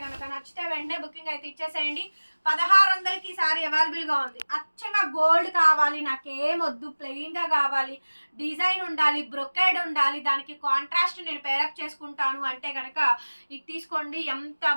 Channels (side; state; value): both; inverted; correlation -1.00